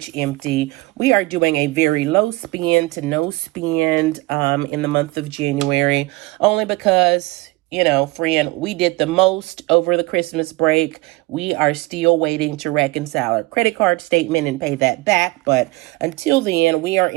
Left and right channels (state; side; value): quieter; left; 21.7 dB